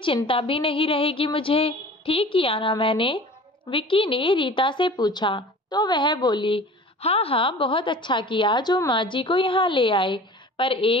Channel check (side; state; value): both; normal; correlation 0.42